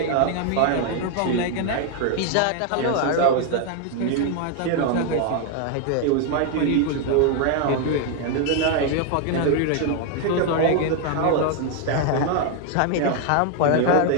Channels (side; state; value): both; different; correlation 0.00